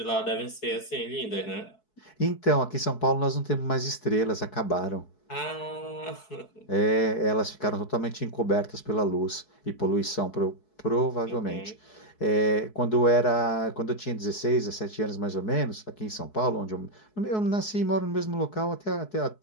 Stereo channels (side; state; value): right; late; 4.7 ms